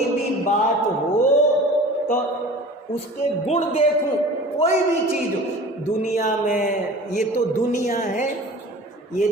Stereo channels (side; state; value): both; normal; correlation 0.41